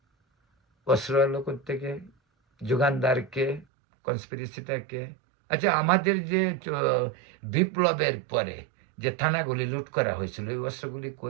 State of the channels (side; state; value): left; drops out; at 3.7 s